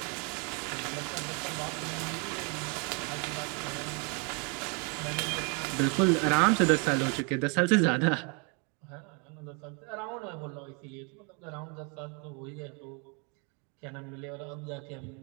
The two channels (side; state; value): left; quieter; 34.3 dB